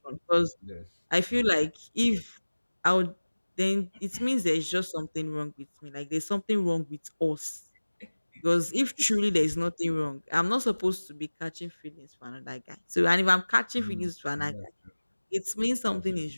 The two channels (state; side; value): inverted; both; correlation -1.00